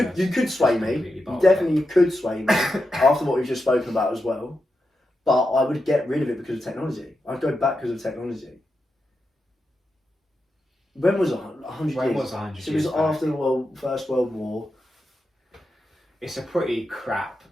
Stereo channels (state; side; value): normal; both; correlation 0.88